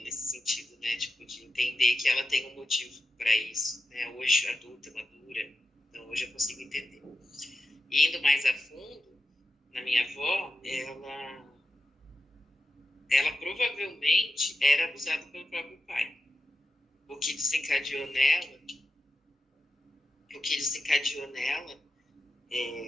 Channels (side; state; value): both; normal; correlation 0.90